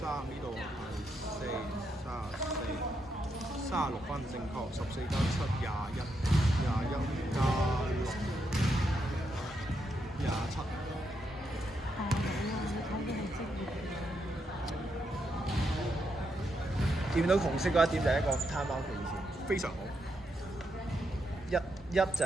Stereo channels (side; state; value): both; normal; correlation 0.81